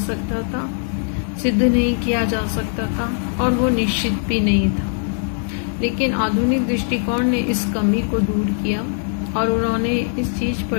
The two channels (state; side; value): silent; right; 65 dB below the other